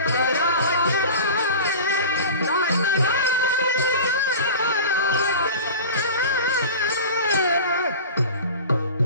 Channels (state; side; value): inverted; both; correlation -0.35